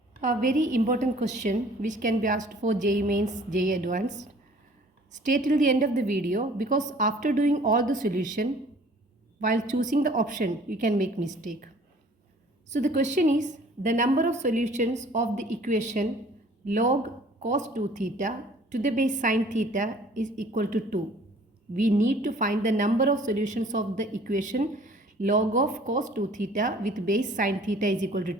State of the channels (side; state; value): both; normal; correlation 0.53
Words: A very important question which can be asked for JEE Mains, JEE Advanced. Stay till the end of the video because after doing all the solution, while choosing the option, you can make mistake. So the question is, the number of solutions of the equation log cos 2 theta to the base sin theta is equal to 2. We need to find the number of solutions of the equation log of cos 2 theta with base sin theta is equal to